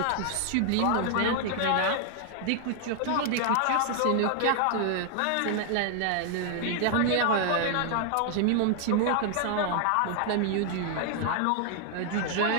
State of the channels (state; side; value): different; both; correlation 0.00